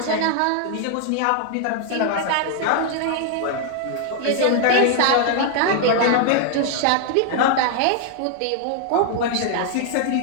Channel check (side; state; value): both; different; correlation 0.00